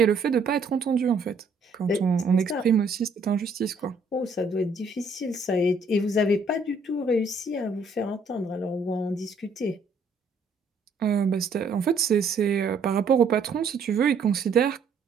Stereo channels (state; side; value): quieter; left; 3.8 dB